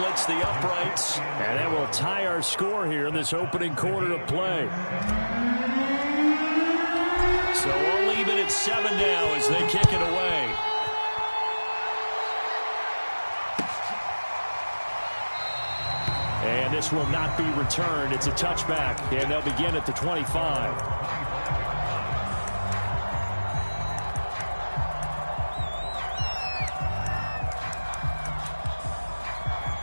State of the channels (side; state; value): both; inverted; correlation -1.00